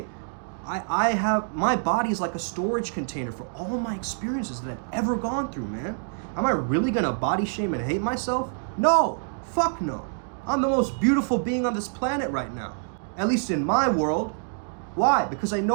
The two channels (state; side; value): silent; left; digital silence